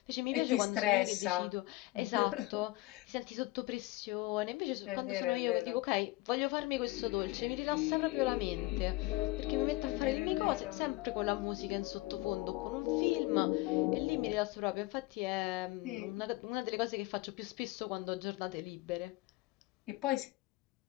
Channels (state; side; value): quieter; right; 19.9 dB